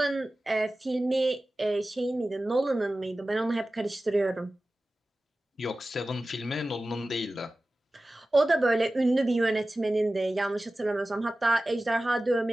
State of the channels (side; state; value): both; normal; correlation 0.96